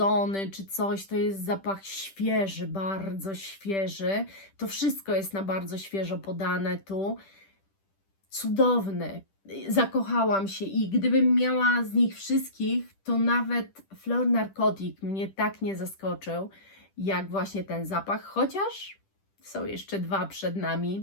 czy coś, to jest zapach świeży, bardzo świeży. To wszystko jest na bardzo świeżo podane tu. Cudowny. Zakochałam się i gdybym miała z nich wszystkich, to nawet Fleur Narcotic mnie tak nie zaskoczył, jak właśnie ten zapach, chociaż są jeszcze dwa przed nami,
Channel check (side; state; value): right; late; 10 ms